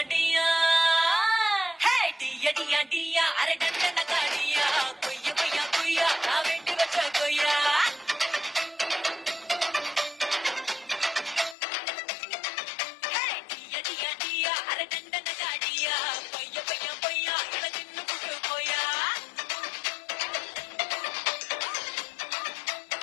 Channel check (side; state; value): right; drops out; at 11.6 s